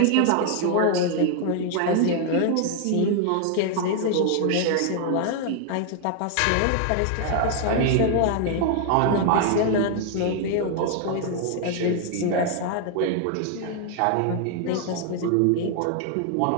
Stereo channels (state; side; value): different; both; correlation 0.00